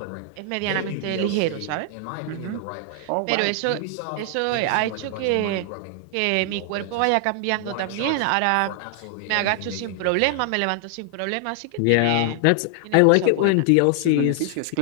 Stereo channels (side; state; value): both; different; correlation 0.00